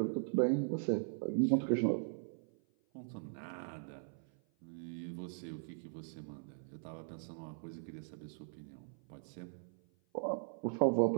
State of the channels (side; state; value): left; silent; 51 dB below the other